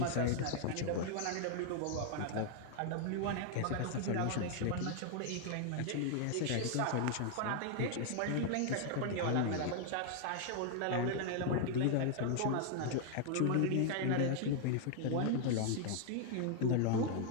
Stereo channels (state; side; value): different; both; correlation 0.00